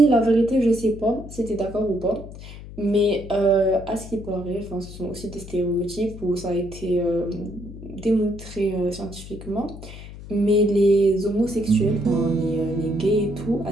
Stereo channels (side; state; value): left; noise; hum, 14 dB below the sound